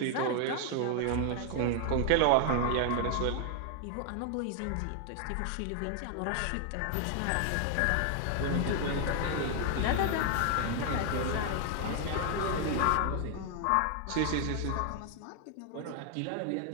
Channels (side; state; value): both; different; correlation 0.00